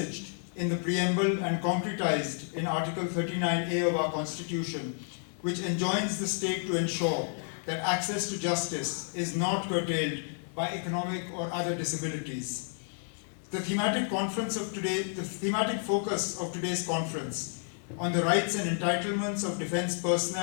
in the preamble and concretized in Article 39A of our Constitution, which enjoins the state to ensure that access to justice is not curtailed by economic or other disabilities. The thematic focus of today's conference on the rights and entitlements of defense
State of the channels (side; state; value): right; silent; 57 dB below the other